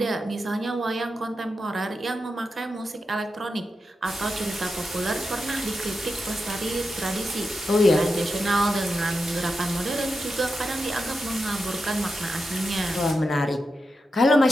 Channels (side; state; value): both; normal; correlation 0.89